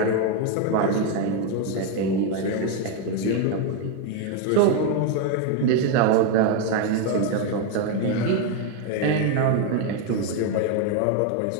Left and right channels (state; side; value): different; both; correlation 0.01